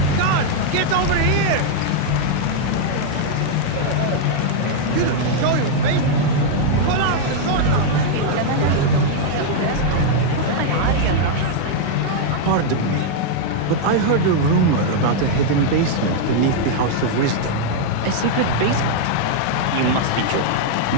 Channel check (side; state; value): both; different; correlation -0.01